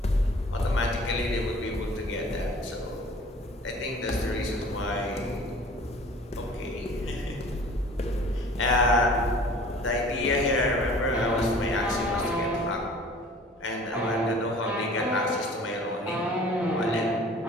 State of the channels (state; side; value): normal; both; correlation 0.48